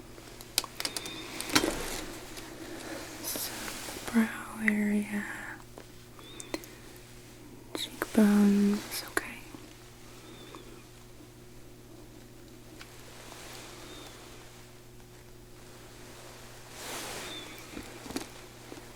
So, brow area, cheekbones, okay.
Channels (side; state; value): both; identical; correlation 1.00